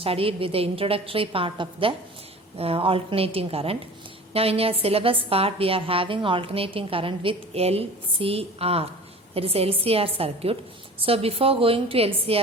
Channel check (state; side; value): normal; both; correlation 0.40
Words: with the introductory part of the alternating current. Now in your syllabus part, we are having alternating current with LCR, that is LCR circuit. So before going to